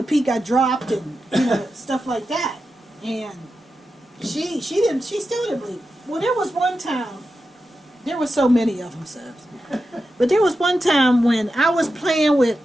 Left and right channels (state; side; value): normal; both; correlation 0.90